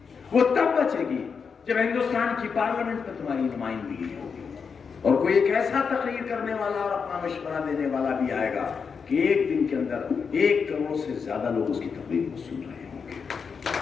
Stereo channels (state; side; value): quieter; right; 5.9 dB